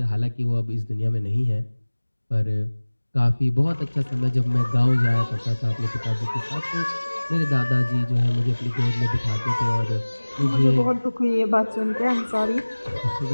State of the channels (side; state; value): both; inverted; correlation -1.00